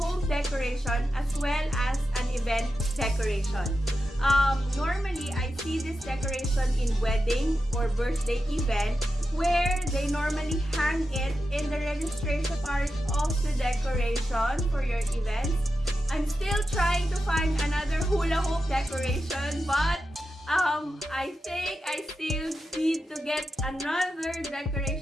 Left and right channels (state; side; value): normal; both; correlation 0.90